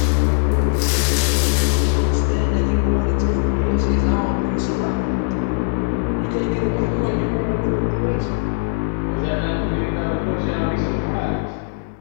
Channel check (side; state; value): right; silent; digital silence